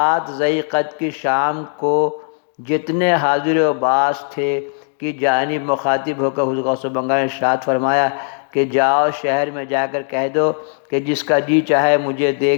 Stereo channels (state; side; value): silent; right; 60 dB below the other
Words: ذی القعدہ کی شام کو جتنے حاضر و باز تھے کی جانب مخاطب ہو کر حضور غوث بنگالہ نے ارشاد فرمایا کہ جاؤ شہر میں جا کر کہہ دو کہ جس کا جی چاہے مجھے